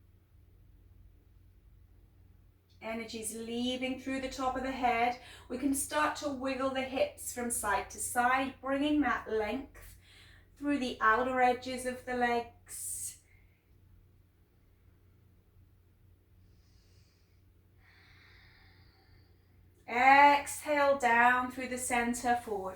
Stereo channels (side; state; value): both; identical; correlation 1.00